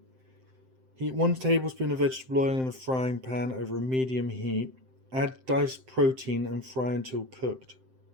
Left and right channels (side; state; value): left; late; 7.7 ms